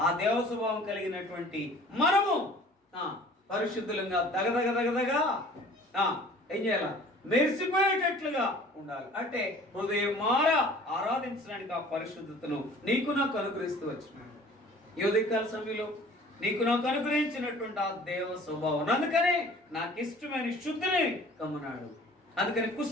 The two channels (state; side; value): normal; both; correlation 0.48